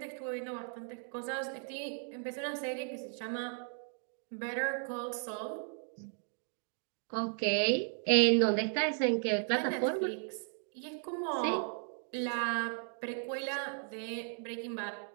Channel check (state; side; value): silent; left; 54 dB below the other